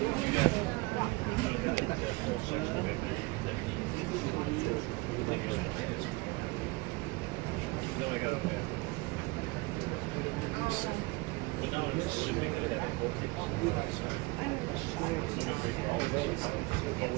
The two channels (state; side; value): quieter; left; 24.5 dB